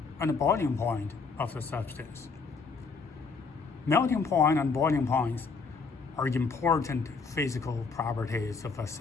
and boiling point of the substance. Melting point and boiling points are important physical properties of a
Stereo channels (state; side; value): quieter; right; 4.7 dB